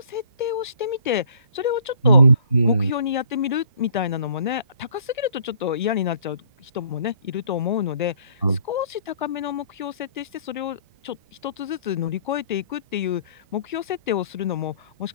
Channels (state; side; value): inverted; both; correlation -0.57